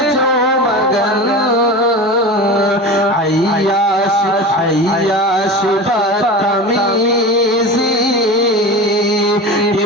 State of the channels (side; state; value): both; normal; correlation 0.30